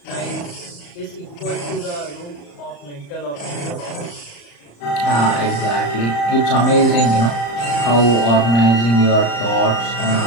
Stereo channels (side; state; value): right; late; 34 ms